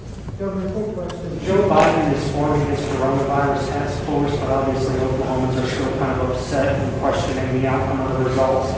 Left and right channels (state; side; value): identical; both; correlation 1.00